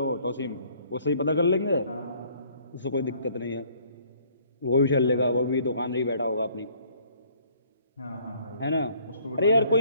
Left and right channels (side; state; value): both; inverted; correlation -0.60